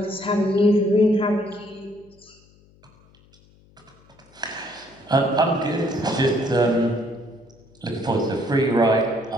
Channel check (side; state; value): left; noise; hum, 29 dB below the sound